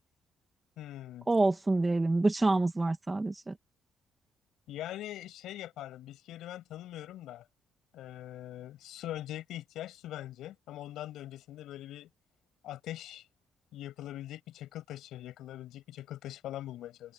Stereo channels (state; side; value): normal; both; correlation 0.90